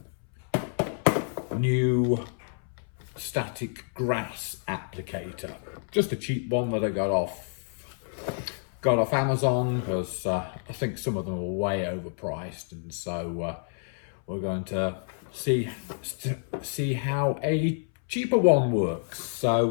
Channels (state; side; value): silent; right; 59 dB below the other